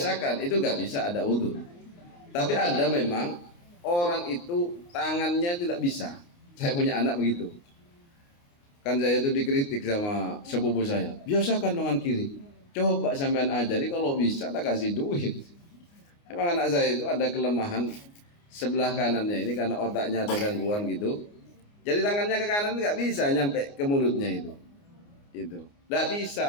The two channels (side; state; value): right; late; 29 ms